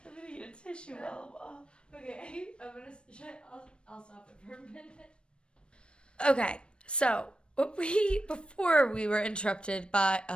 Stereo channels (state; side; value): late; right; 0.056 ms